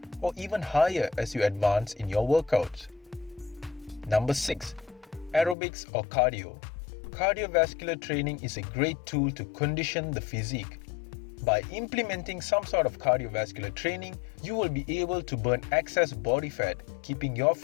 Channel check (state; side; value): drops out; right; at 5.6 s